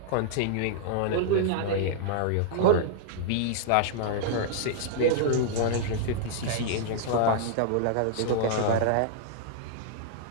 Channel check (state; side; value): different; both; correlation -0.01